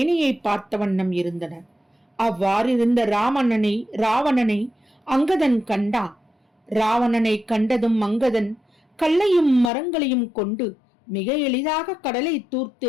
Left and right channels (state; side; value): drops out; right; at 9.7 s